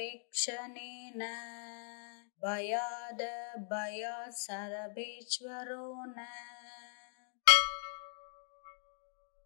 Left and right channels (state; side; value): silent; right; 51 dB below the other